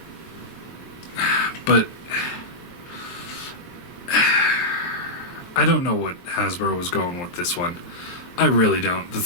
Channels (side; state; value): right; late; 23 ms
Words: But I don't know what Hasbro was going with this one. I really don't. The